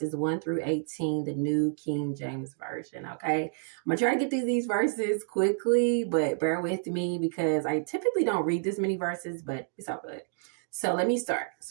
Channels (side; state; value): left; silent; digital silence